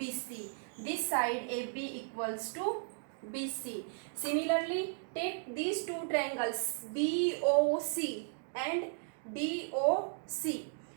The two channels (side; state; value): left; silent; digital silence